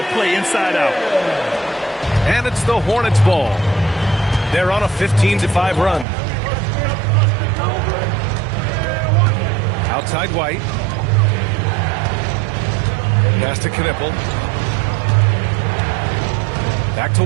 play inside out. And it's the Hornets ball. They're on a 15-5 run. Outside White. Pass to Knippel. Back to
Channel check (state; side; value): drops out; left; at 6.1 s